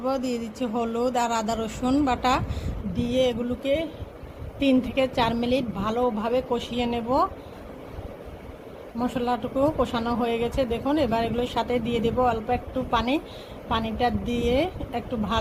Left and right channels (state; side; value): identical; both; correlation 1.00